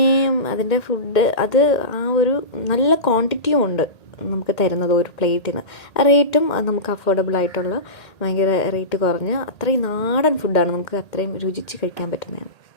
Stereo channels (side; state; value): right; late; 2.1 ms